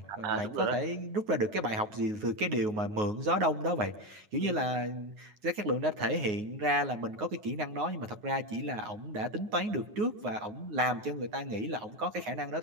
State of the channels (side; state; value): left; late; 9.5 ms